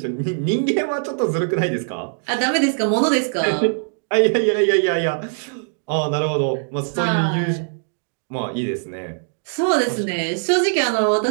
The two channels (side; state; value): left; silent; digital silence